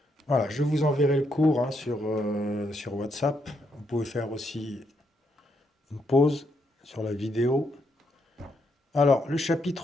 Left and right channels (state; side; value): normal; both; correlation 0.77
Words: Voilà, je vous enverrai le cours hein, sur WhatsApp. Vous pouvez faire aussi une pause sur la vidéo. Alors, le